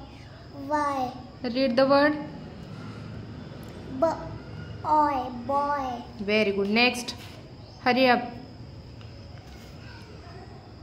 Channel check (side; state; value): both; identical; correlation 1.00